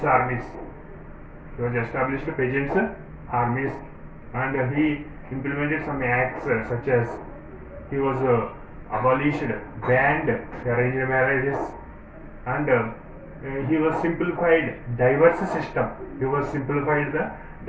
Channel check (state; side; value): identical; both; correlation 1.00